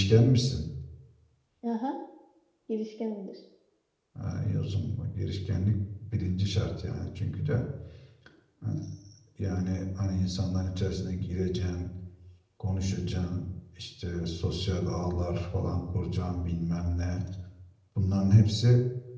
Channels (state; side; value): identical; both; correlation 1.00